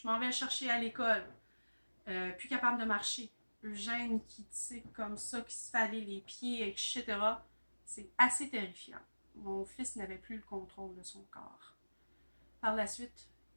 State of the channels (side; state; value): both; inverted; correlation -1.00